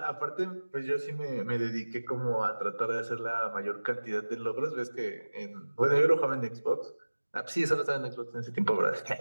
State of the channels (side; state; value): both; inverted; correlation -1.00